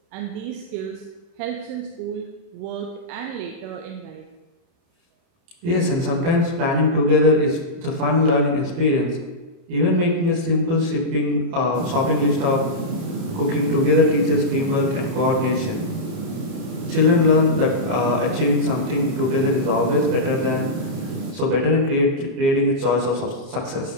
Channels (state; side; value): late; left; 30 ms